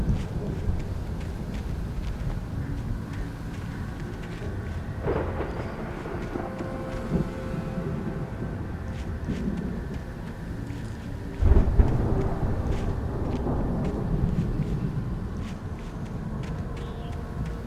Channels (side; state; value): both; identical; correlation 1.00